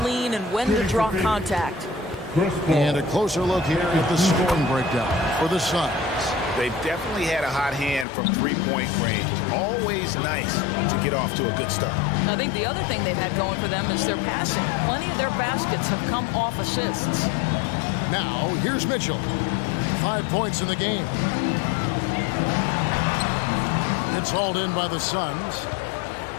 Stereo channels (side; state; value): right; drops out; at 8.1 s